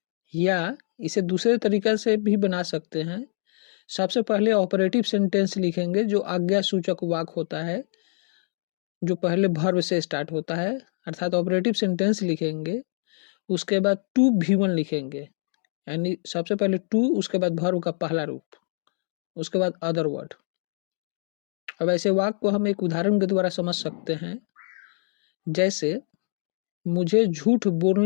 या इसे दूसरे तरीके से भी बना सकते हैं। सबसे पहले ऑपरेटिव सेंटेंस लिखेंगे, जो आज्ञा सूचक वाक्य होता है, जो पहले वर्ब से स्टार्ट होता है, अर्थात ऑपरेटिव सेंटेंस लिखेंगे। उसके बाद टू भी1 लिखेंगे, यानी सबसे पहले टू, उसके बाद वर्ब का पहला रूप, उसके बाद अदर वर्ड। अब ऐसे वाक्य को हम एक उदाहरण के द्वारा समझ सकते हैं, जैसे मुझे झूठ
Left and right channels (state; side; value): silent; right; digital silence